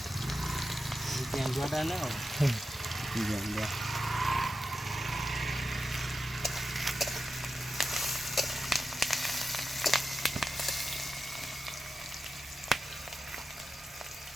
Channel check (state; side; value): normal; both; correlation 0.91